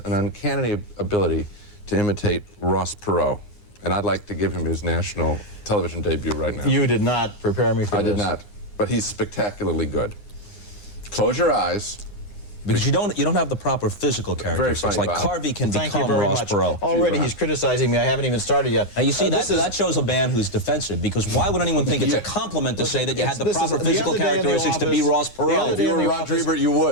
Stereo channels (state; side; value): late; right; 9.7 ms